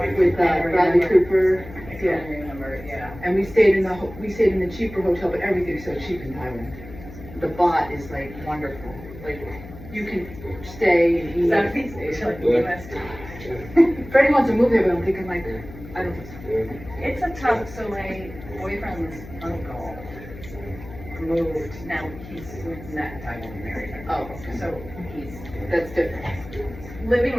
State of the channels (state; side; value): noise; left; hum, 15 dB below the sound